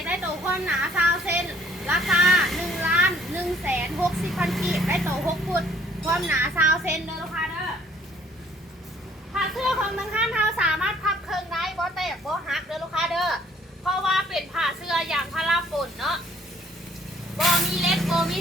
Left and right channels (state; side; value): normal; both; correlation 0.60